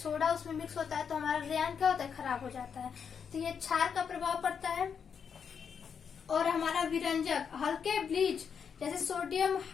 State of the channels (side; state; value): right; quieter; 6.9 dB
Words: उसमें मिक्स होता है तो हमारा रेयान क्या होता है, खराब हो जाता है। तो ये क्षार का प्रभाव पड़ता है। और हमारा विरंजक हल्के ब्लीच जैसे सोडियम